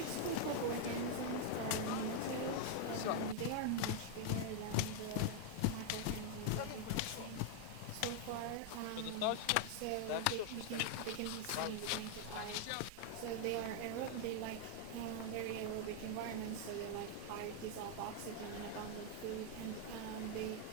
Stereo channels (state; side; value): different; both; correlation 0.00